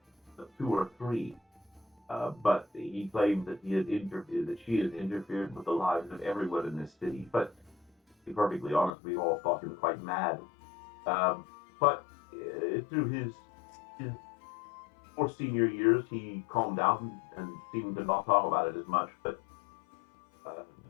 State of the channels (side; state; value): right; drops out; at 8.9 s